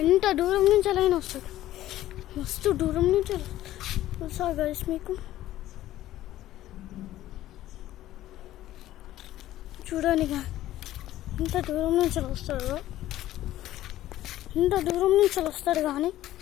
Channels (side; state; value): right; quieter; 14.2 dB